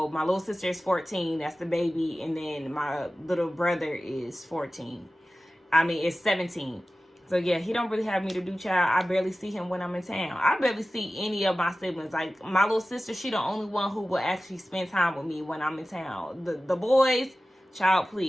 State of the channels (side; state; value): both; normal; correlation 0.96